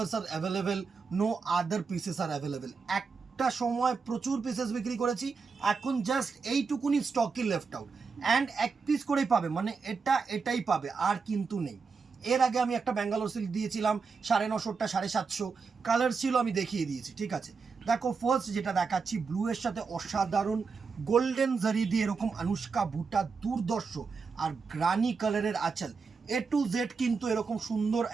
are available, no other pieces are available. একটা সময় প্রচুর পিসেস বিক্রি করেছি, এখন জাস্ট এইটুকুনি স্টকই লেফট আউট, অ্যান্ড এক পিস করেই পাবে, মানে এটাই পাবে, আর কিন্তু নেই। এর আগে আমি একটা ব্যাঙ্গালোর সিল্ক দিয়েছিলাম 950, 750 কালার ছিল, আমি দেখিয়ে দিয়েছি। ঠিক আছে, দেখো ফার্স্ট যেটা দেখাচ্ছি, ব্লু এর সাথে অসাধারণ গোল্ডেন জারি দিয়ে এরকম অনুষ্কা বুটা, দুর্দর্শ, আর গ্রানি কালারের আঁচল, এ টু জেড কিন্তু এরকম সুন্দর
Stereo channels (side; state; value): left; quieter; 5.0 dB